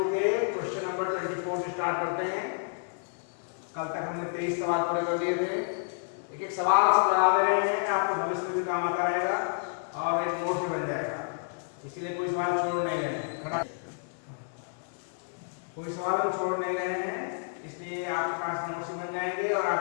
के क्वेश्चन नंबर 24 से स्टार्ट करते हैं। कल तक हमने 23 सवाल पूरे कर दिए थे। एक एक सवाल से बना दे रहे हैं, आपको भविष्य में भी काम आता रहेगा और एक नोट भी बन जाएगा, इसीलिए कोई सवाल छोड़ नहीं रहे हैं। खड़ा कोई सवाल हम छोड़ नहीं रहे हैं, इसलिए आपके पास नोट्स बन जाएंगे और आप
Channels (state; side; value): silent; right; digital silence